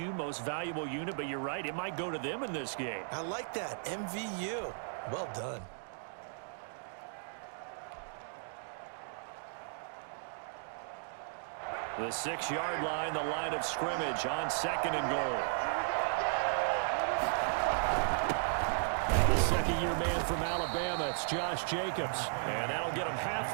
most valuable unit, but you're right, it might go to them in this game. I like that, MVU. Well done. The 6-yard line, the line of scrimmage on second and goal. Second-year man from Alabama, it's Josh Jacobs. And that'll get him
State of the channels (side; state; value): left; silent; digital silence